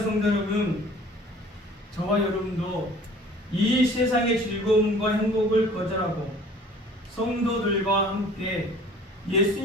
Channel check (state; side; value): normal; both; correlation 0.49